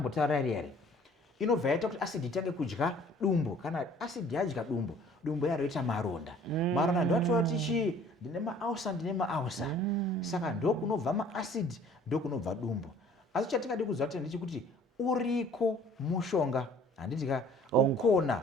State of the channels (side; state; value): both; normal; correlation 0.53